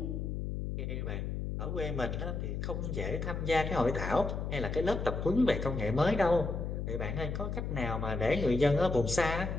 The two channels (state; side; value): noise; left; hum, 3 dB below the sound